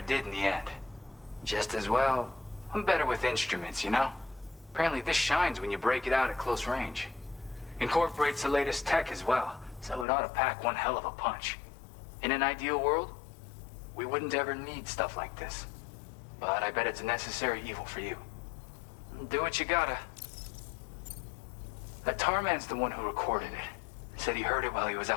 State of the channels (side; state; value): right; drops out; at 10.1 s